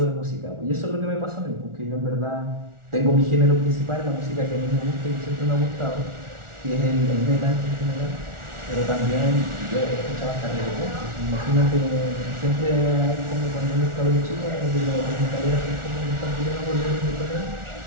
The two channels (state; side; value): late; left; 1.4 ms